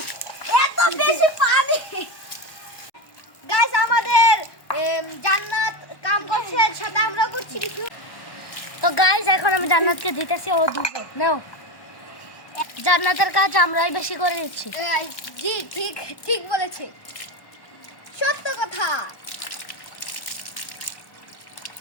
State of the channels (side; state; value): right; late; 1.1 ms